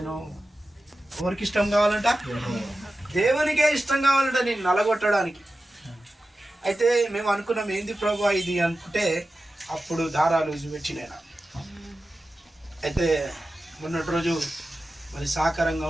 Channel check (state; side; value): normal; both; correlation 0.94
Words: ఎవరికి ఇష్టం కావాలంట? దేవునికే ఇష్టం కావాలంట నేను నలగొట్టడానికి. అయితే మేము అనుకున్నాం ఏంది ప్రభా ఇది అనుకుంటే అప్పుడు దారాలు పెట్టినా. అయితే మొన్నటి రోజు మరి సహకారంగా